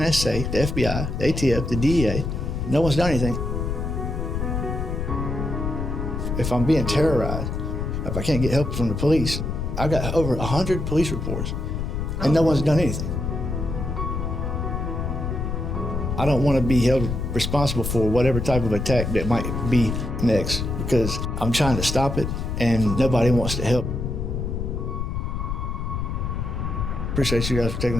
the FBI, the ATF, the DEA. No one's done anything. If I'm being terrorized, if I can't get help from the police, I got over 100 police reports, and no one's done anything. I don't want to be held responsible for whatever type of attack that might be next, because I'm trying to stop it, and nobody wants to help. Appreciate you guys for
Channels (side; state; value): left; noise; rumble, 3 dB below the sound